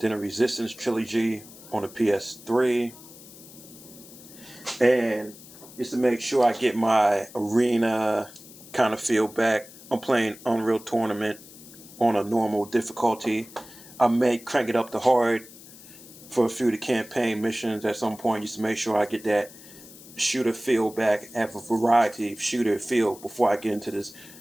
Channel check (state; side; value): noise; left; hiss, 19 dB below the sound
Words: a Resistance Trilogy on the PS3. And just to make sure I get my arena kind of feel back, I'm playing Unreal Tournament on a normal difficulty. I may crank it up to hard for a few of the campaign missions at some point, just to make sure I get that shooter feel back, have a variety of shooter feel before I get into this